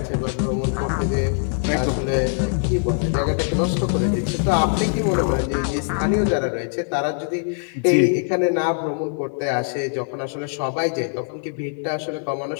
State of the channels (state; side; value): silent; right; 64 dB below the other